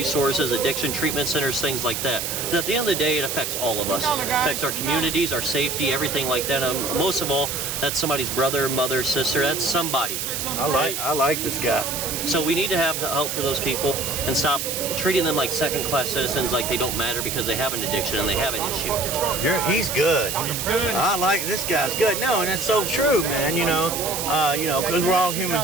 addiction treatment centers, things like that. But at the end of the day, it affects all of us. It affects our communities, our safety, everything like that. Most of all, that's somebody's brother, mother, sister. That's somebody. I like this guy. So we need to have help for those people and stop treating them like second-class citizens, like they don't matter because they have an addiction and they have an issue. He's good. He's good. I like this guy's good. No, and it's so true, man. Because we're all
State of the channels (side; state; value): right; noise; hiss, 3 dB below the sound